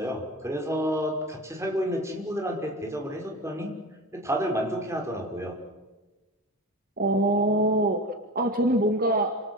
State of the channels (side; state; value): both; normal; correlation 0.30